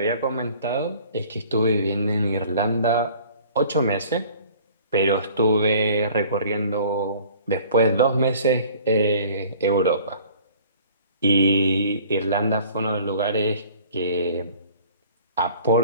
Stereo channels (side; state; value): both; inverted; correlation -0.51